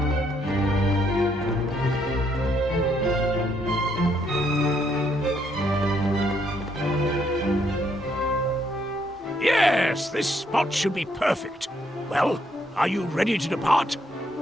Yes, this spot should be perfect. Well, are you ready to depart?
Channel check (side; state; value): both; normal; correlation 0.72